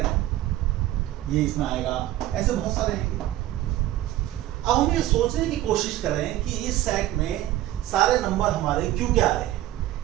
हैं, ये इसमें आएगा। ऐसे बहुत सारे हैं। अब हम ये सोचने की कोशिश करें कि इस सेट में सारे नंबर हमारे क्यों क्या आ रहे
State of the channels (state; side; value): quieter; left; 14.4 dB